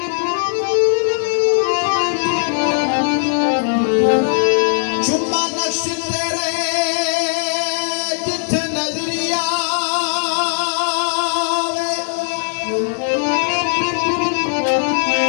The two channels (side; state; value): right; silent; 67 dB below the other